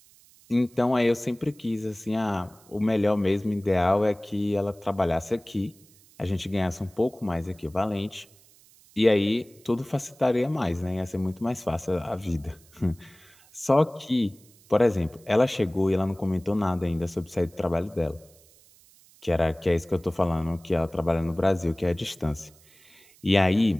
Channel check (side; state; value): right; noise; hiss, 27 dB below the sound